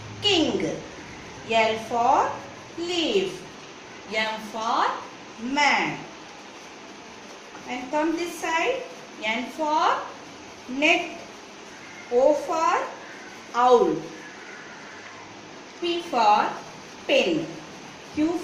king. L for leaf. M for man. And come this side. N for net. O for owl. P for pen. Q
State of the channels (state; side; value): identical; both; correlation 1.00